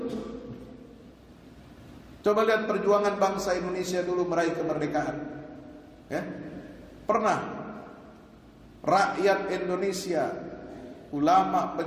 Coba lihat perjuangan bangsa Indonesia dulu meraih kemerdekaan. Ya, pernah rakyat Indonesia, ulama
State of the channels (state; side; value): identical; both; correlation 1.00